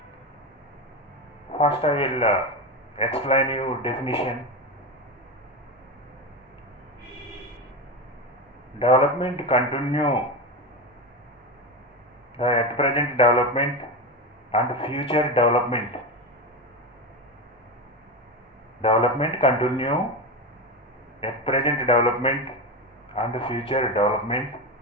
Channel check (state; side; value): normal; both; correlation 0.18